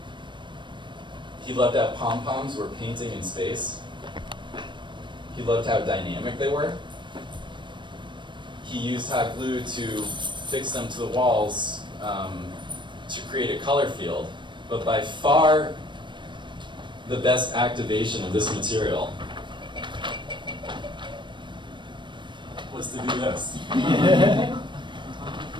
He loved how pom-poms were painting in space. He loved how dynamic they were. He used hot glue to fix them to the walls to create a color field, but by far the best activation of this material was to do this.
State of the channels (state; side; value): late; left; 0.23 ms